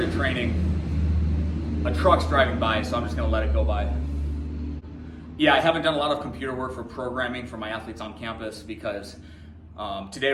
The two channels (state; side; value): identical; both; correlation 1.00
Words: training, a truck's driving by, so I'm just gonna let it go by. Yeah, I haven't done a lot of computer work for programming for my athletes on campus because today